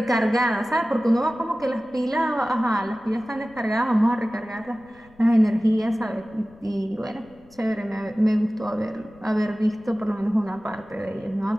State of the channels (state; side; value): noise; left; rumble, 27 dB below the sound